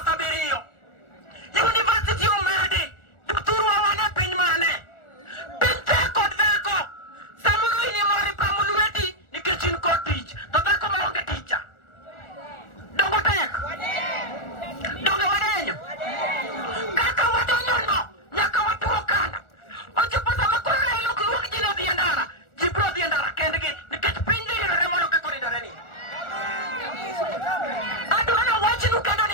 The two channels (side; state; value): right; late; 1.4 ms